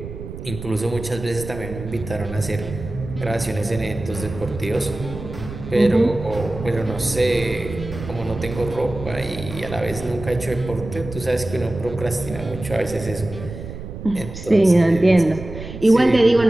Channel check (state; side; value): noise; right; rumble, 11 dB below the sound